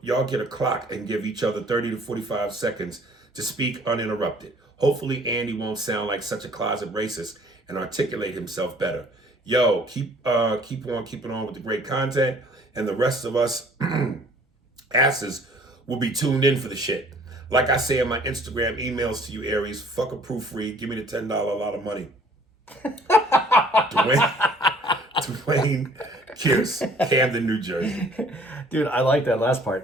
get a clock and give each other 30 to 45 seconds to speak uninterrupted. Hopefully Andy won't sound like such a closet racist and articulate himself better. Yo, keep on keeping on with the great content, and the rest of us asses will be tuned in for the shit. Like I say in my Instagram emails to you, Aries, fuck a proofread, give me the $10 a lot of money. Dwayne Pierce, Camden, New Jersey. Dude, I like that last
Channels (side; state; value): both; normal; correlation 0.56